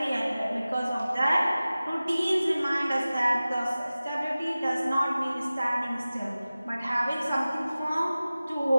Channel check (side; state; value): both; inverted; correlation -0.97